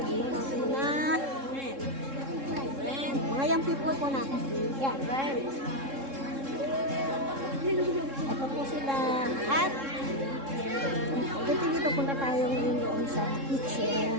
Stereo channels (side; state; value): left; late; 3.7 ms